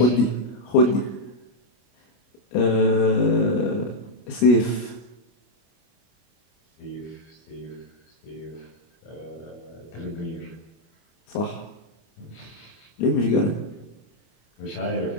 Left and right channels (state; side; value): late; right; 25 ms